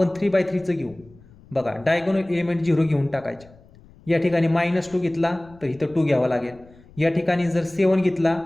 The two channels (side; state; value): left; noise; rumble, 25 dB below the sound